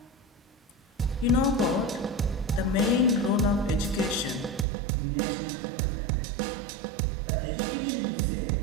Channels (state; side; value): drops out; left; at 4.7 s